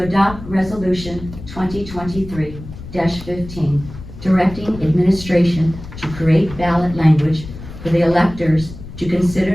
resolution 2023-15, directing administration to create ballot language for the electors to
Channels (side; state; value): left; noise; rumble, 13 dB below the sound